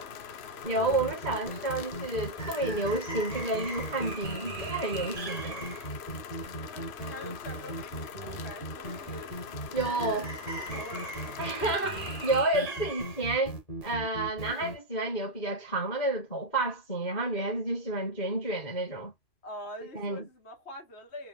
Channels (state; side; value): late; right; 2.5 ms